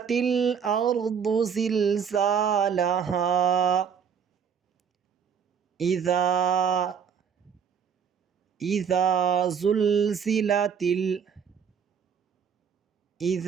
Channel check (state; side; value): quieter; left; 7.2 dB